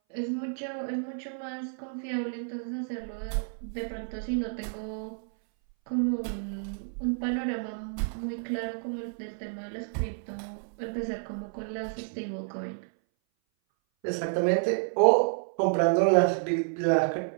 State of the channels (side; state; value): left; silent; 58 dB below the other